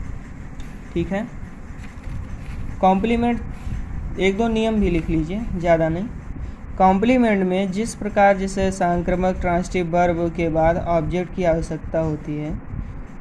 ठीक है, कॉम्प्लीमेंट 1-2 नियम भी लिख लीजिए, ज़्यादा नहीं। कॉम्प्लीमेंट में जिस प्रकार जैसे सांक्रामक ट्रांसिटिव वर्ब के बाद ऑब्जेक्ट की आवश्यकता होती है,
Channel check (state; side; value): identical; both; correlation 1.00